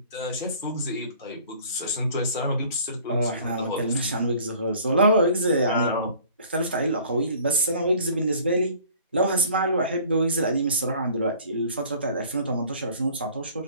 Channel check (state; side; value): inverted; both; correlation -0.50